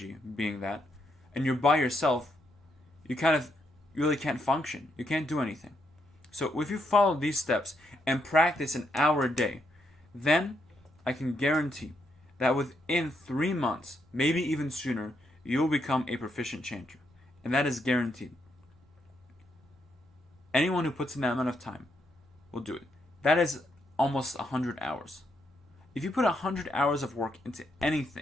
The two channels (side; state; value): both; normal; correlation 0.78